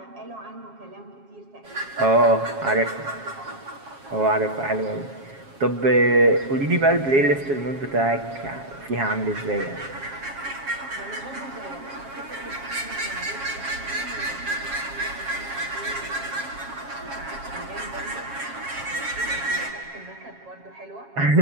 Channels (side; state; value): left; late; 7.3 ms